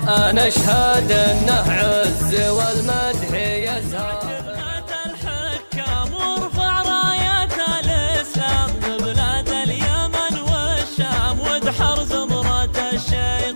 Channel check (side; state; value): both; inverted; correlation -1.00